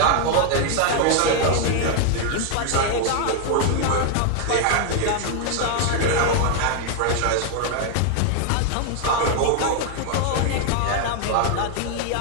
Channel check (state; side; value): different; both; correlation 0.00